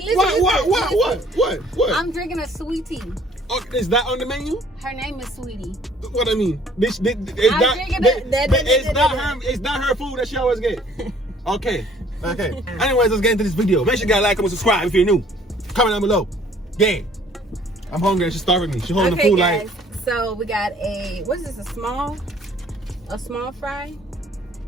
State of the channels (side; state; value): both; normal; correlation 0.58